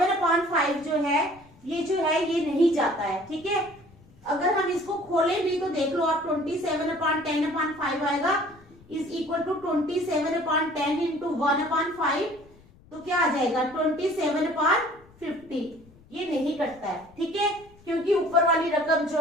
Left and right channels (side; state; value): left; noise; rumble, 26 dB below the sound